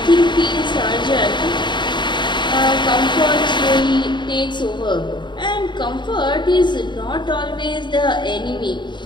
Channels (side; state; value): right; late; 0.22 ms